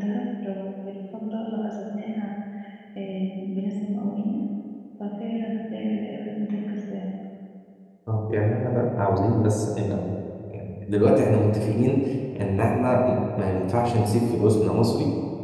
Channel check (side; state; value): both; identical; correlation 1.00